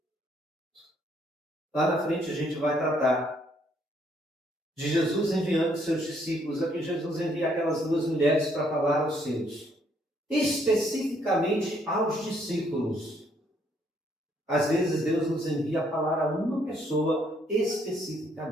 Lá na frente a gente vai tratar de Jesus enviando seus discípulos. Aqui Jesus envia aquelas 2 mulheres para falar aos seus. Especificamente aos discípulos. Às vezes Deus nos envia a falar a uma pessoa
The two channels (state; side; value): normal; both; correlation 0.69